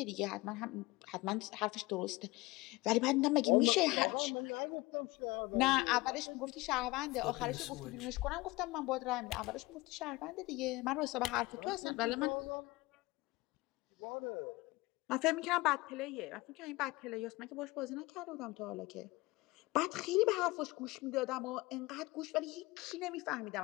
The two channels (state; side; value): quieter; right; 21.7 dB